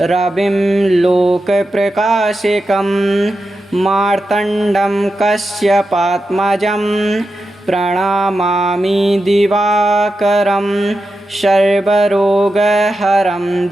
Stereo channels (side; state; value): both; normal; correlation 0.89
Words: रविं लोकप्रकाशकं मार्तण्डं कश्यपात्मजं प्रणमामि दिवाकरं सर्वरोगहरं